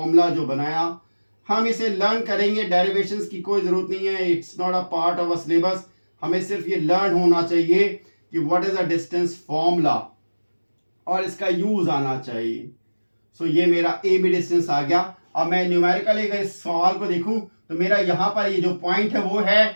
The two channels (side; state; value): both; inverted; correlation -1.00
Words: जो बनाया, हम इसे लर्न करेंगे, डेरिवेशंस की कोई जरूरत नहीं है, it's not a part of a syllabus. हमें सिर्फ ये लर्न होना चाहिए कि what is a distance formula और इसका यूज आना चाहिए। ये मेरा AB डिस्टेंस आ गया। अब मैं न्यूमेरिकली अगर इस सवाल को देखूं तो मेरा यहां पर ये जो पॉइंट है वो